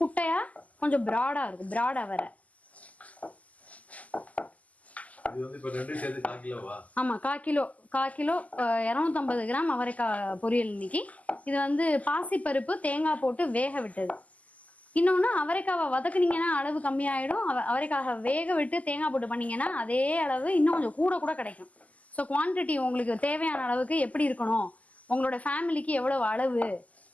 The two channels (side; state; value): right; late; 0.074 ms